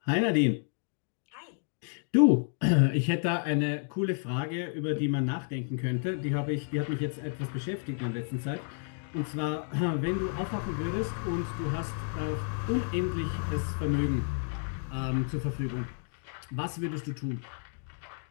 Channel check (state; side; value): silent; right; 57 dB below the other